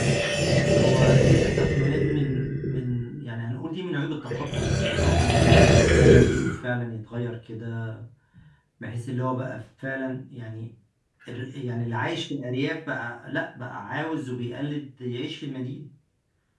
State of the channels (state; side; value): identical; both; correlation 1.00